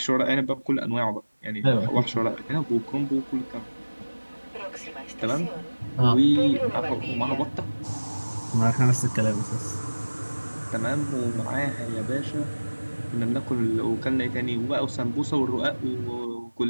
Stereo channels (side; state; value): both; inverted; correlation -1.00